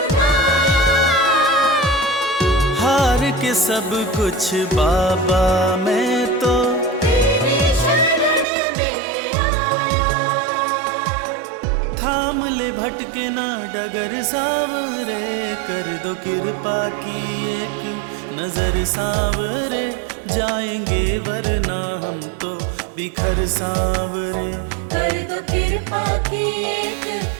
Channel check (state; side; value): drops out; left; at 8.5 s